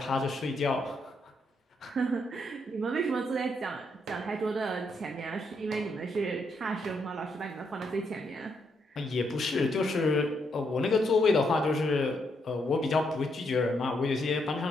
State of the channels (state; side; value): normal; both; correlation 0.77